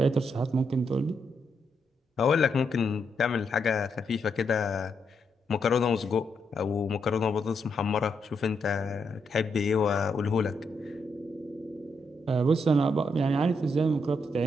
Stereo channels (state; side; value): normal; both; correlation 0.80